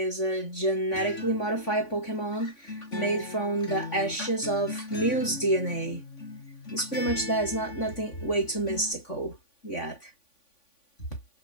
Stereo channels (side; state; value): right; late; 3.5 ms